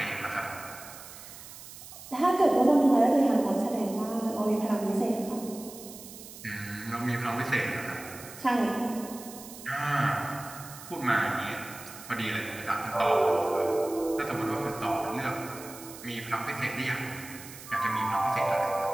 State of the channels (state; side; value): noise; right; hiss, 15 dB below the sound